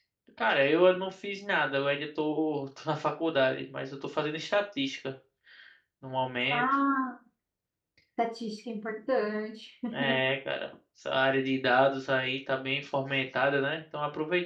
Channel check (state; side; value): identical; both; correlation 1.00